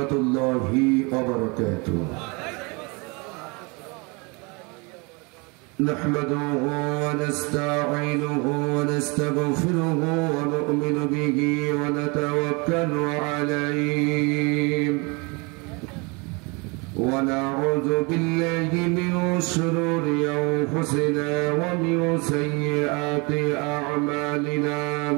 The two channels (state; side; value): quieter; left; 29.2 dB